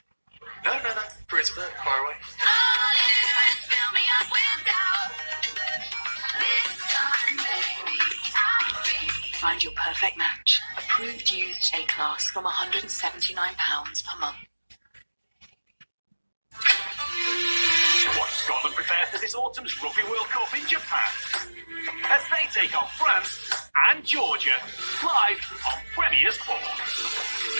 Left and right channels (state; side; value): inverted; both; correlation -1.00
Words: No. Praise a bit, far away. Find your perfect match. Approved used A-class from £179 per month. Watch Scotland prepare for this autumn's Rugby World Cup in Japan as they take on France and Georgia live on Premier Sport.